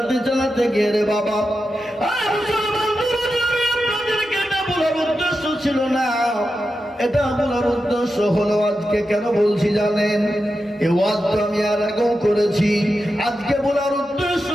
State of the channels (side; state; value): both; normal; correlation 0.90